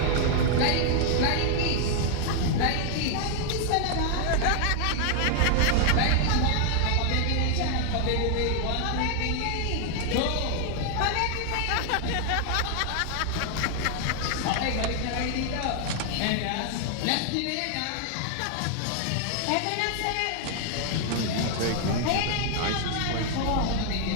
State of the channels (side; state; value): both; different; correlation 0.00